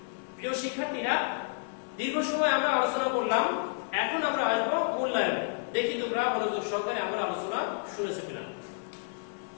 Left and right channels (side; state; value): right; silent; digital silence